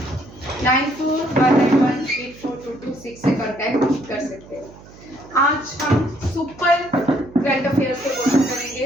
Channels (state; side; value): noise; right; hum, 21 dB below the sound